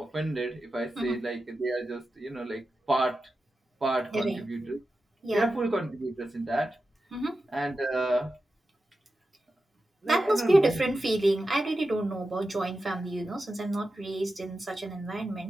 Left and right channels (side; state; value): both; normal; correlation 0.92